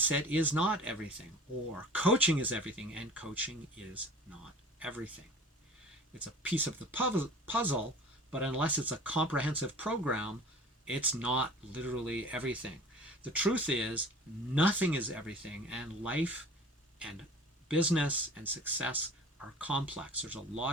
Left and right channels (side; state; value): both; normal; correlation 0.43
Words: is not everything, or coaching is everything, and coaching is not everything. It's a piece of the puzzle, but unless it's a comprehensive program, it's not literally everything. The truth is, nothing is everything, and life and business and success are complex. There's a